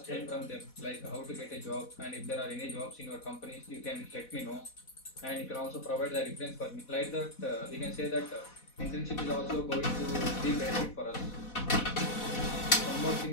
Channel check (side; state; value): right; late; 4.1 ms